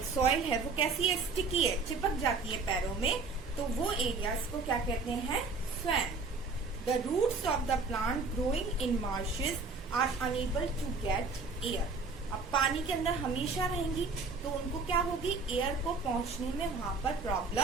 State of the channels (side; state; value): left; quieter; 4.1 dB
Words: सॉइल है वो कैसी है? स्टिकी है, चिपक जाती है पैरों में, तो वो एरियाज को क्या कहते हैं? Swamp. The roots of the plant growing in marshes are unable to get air. अब पानी के अंदर हमेशा रहेंगी तो उनको क्या होगी? एयर को पहुंचने में वहां पर